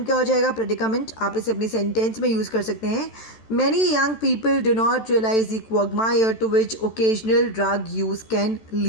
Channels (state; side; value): late; right; 13 ms